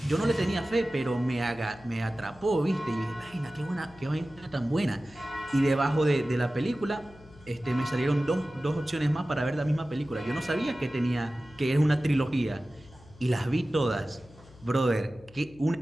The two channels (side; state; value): left; noise; hum, 23 dB below the sound